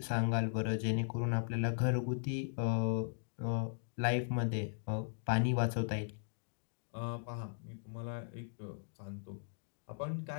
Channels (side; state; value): right; silent; digital silence